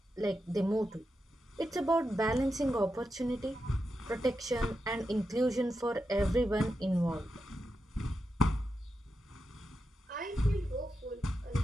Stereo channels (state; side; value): normal; both; correlation 0.88